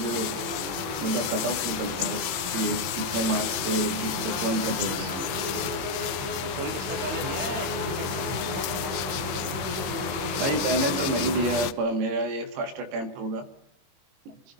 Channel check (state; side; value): late; left; 21 ms